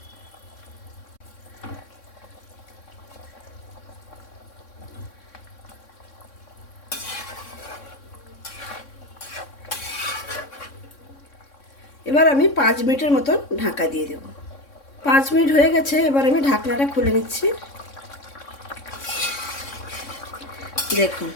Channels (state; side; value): late; right; 3.6 ms